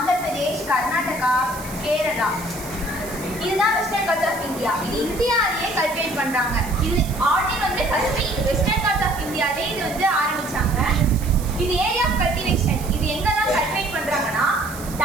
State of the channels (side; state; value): right; noise; hiss, 14 dB below the sound